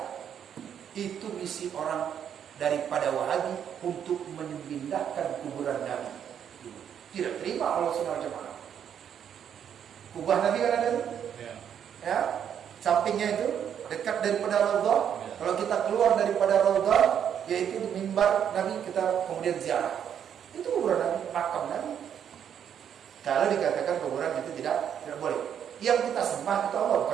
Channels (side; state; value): left; quieter; 8.8 dB